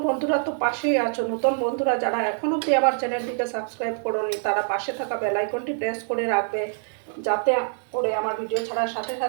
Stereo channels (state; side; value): silent; left; 62 dB below the other